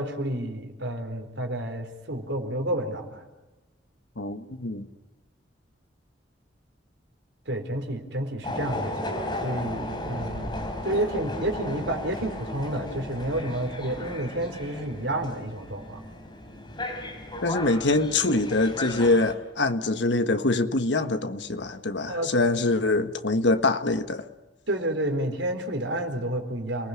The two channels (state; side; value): normal; both; correlation 0.19